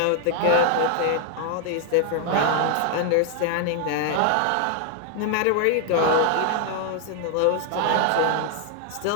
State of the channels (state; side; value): different; both; correlation 0.00